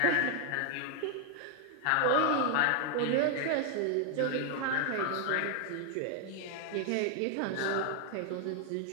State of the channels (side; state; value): both; different; correlation 0.00